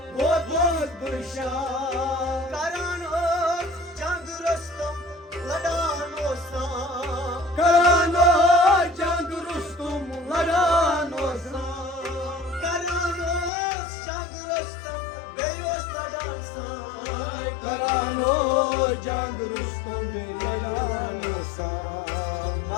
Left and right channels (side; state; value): right; drops out; at 13.5 s